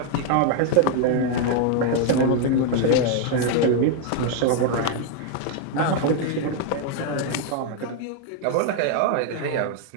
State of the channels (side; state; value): both; different; correlation 0.00